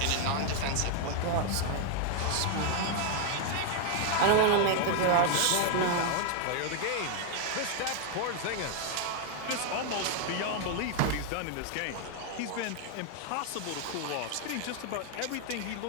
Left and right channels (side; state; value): both; different; correlation 0.00